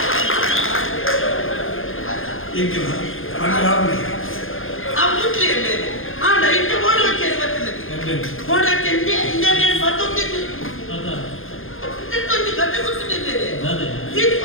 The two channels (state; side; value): late; right; 0.60 ms